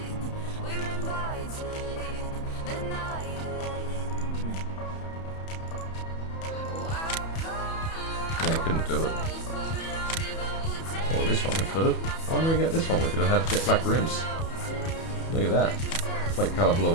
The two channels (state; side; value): late; right; 31 ms